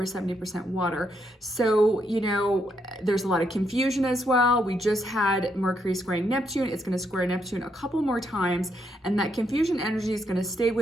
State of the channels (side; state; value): both; normal; correlation 0.77